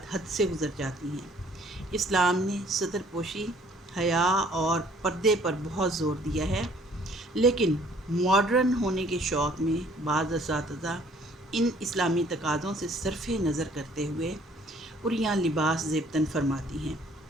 حد سے گزر جاتی ہیں۔ اسلام نے ستر پوشی، حیا اور پردے پر بہت زور دیا ہے، لیکن ماڈرن ہونے کے شوق میں بعض اساتذہ ان اسلامی تقاضوں سے صرف نظر کرتے ہوئے عریاں لباس زیبتاً فرماتی ہیں۔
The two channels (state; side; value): normal; both; correlation 0.58